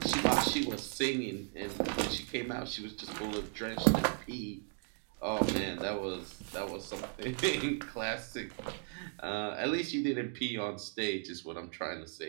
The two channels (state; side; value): silent; left; 54 dB below the other